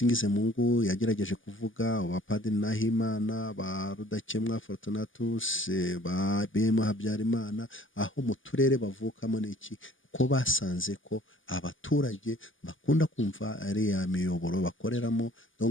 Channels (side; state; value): right; late; 0.58 ms